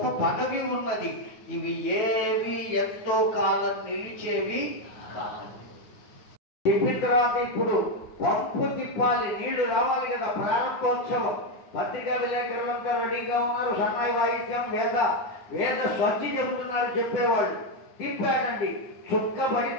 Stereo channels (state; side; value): late; right; 9.9 ms